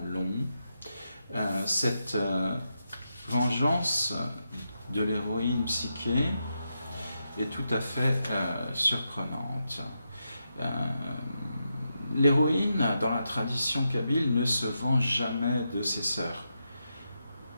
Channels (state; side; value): inverted; both; correlation -0.86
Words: long. Cette vengeance de l'héroïne Psyché est tout à fait surprenante. L'héroïne, dans la tradition kabyle, ne se venge jamais de ses sœurs.